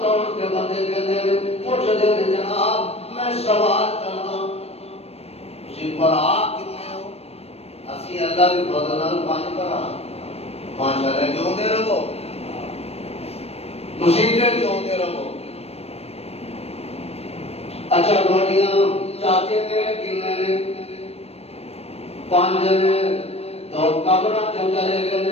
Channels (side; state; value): right; late; 0.29 ms